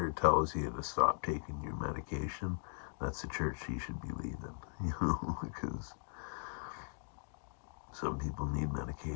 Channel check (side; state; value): right; silent; digital silence